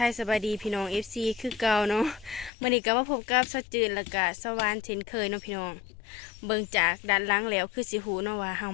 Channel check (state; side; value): drops out; right; at 2.5 s